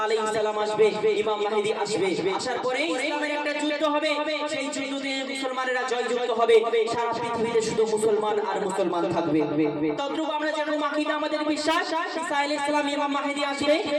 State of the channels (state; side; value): identical; both; correlation 1.00